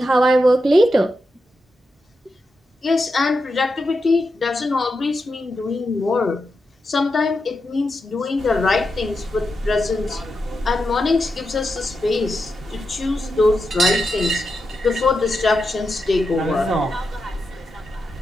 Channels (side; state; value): both; normal; correlation 0.87